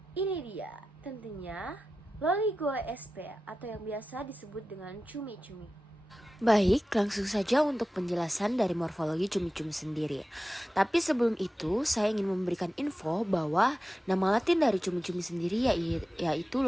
Ini dia, tentunya Loligo SP atau yang biasa disebut dengan cumi-cumi. Baik, langsung saja untuk penjelasan dari morfologi cumi-cumi sendiri. Tapi sebelum itu, saya ingin memberikan info bahwa nama latin dari cumi-cumi sendiri yaitu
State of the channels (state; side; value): normal; both; correlation 0.94